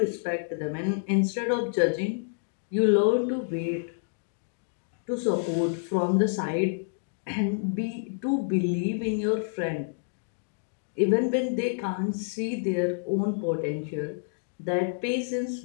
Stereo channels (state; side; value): silent; right; digital silence